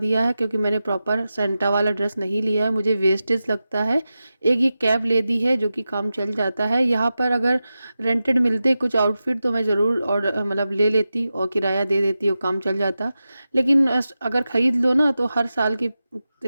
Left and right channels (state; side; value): inverted; both; correlation -0.92